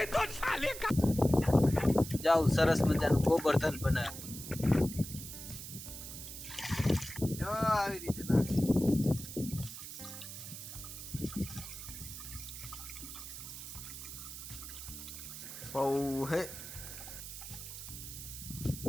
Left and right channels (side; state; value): right; noise; hiss, 10 dB below the sound